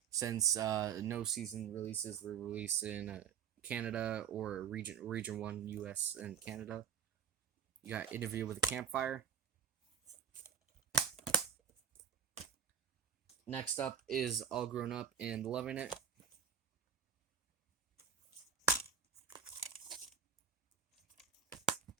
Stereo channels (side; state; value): left; quieter; 8.3 dB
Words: Since no season releases were released in Canada or region 1 US and Canada. You got Interview with a Campfire. Next up is All Grown Up and Loving It.